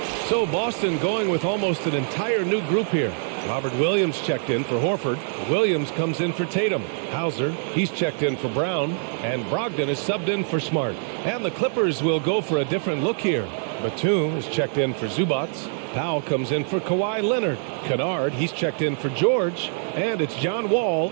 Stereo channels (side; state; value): left; silent; 56 dB below the other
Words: So Boston going with almost an entire new group here. Robert Williams checked in for Horford. Williams comes in for Tatum. Hauser, he's checked in for Brown. And Brogdon is subbed in for Smart. And the Clippers will go for a different look here. Batum is checked in for Zubac. Powell comes in for Kawhi Leonard. Kennard, he's checked in for George. And it's John Wall